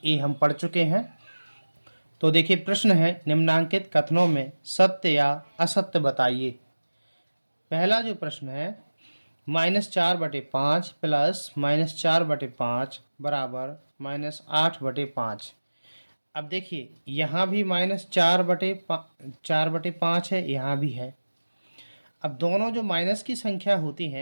हम पढ़ चुके हैं। तो देखिए, प्रश्न है निम्नांकित कथनों में सत्य या असत्य बताइए। पहला जो प्रश्न है, -4/5 प्लस -4/5 बराबर -8/5। अब देखिए, यहाँ भी -4/5 है, यहाँ भी है। अब दोनों जो माइनस की संख्या होती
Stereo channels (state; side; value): inverted; both; correlation -1.00